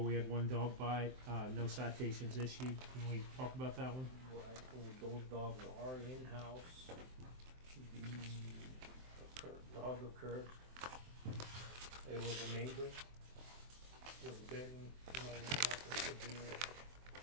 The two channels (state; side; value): late; left; 23 ms